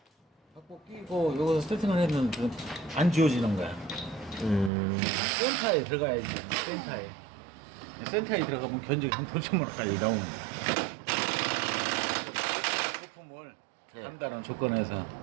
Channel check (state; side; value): drops out; left; at 4.7 s